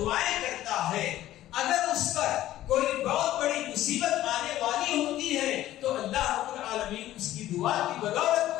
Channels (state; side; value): quieter; right; 14.1 dB